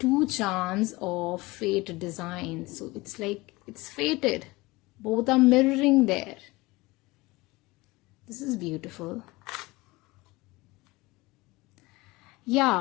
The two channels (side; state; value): right; quieter; 21.9 dB